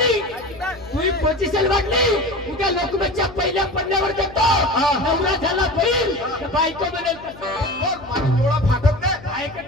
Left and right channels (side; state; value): left; noise; hum, 19 dB below the sound